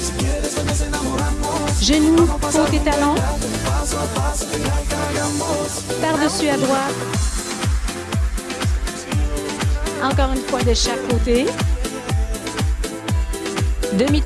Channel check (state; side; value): identical; both; correlation 1.00